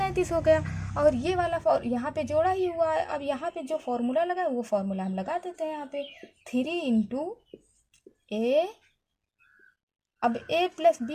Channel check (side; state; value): both; identical; correlation 1.00